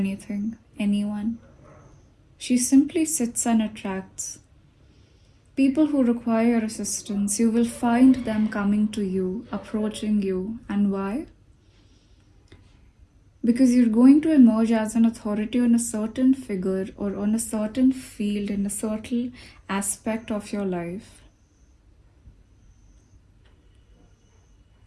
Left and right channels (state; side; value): identical; both; correlation 1.00